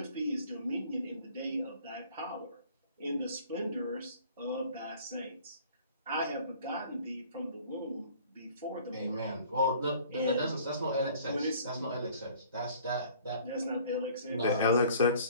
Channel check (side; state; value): both; inverted; correlation -0.52